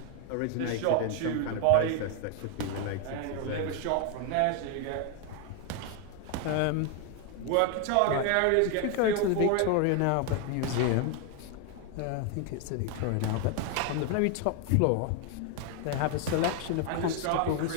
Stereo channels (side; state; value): both; different; correlation 0.01